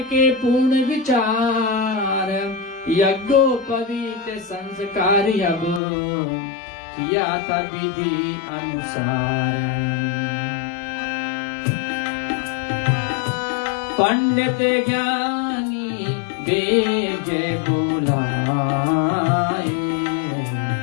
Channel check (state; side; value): drops out; right; at 5.8 s